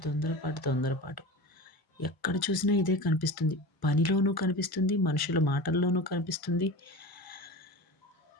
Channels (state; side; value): late; right; 1.0 ms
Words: తొందరపాటు, తొందరపాటు. ఎక్కడ చూసినా ఇదే కనిపిస్తుంది. పనిలోనూ కనిపిస్తుంది, మనుషుల మాటల్లోనూ కనిపిస్తుంది.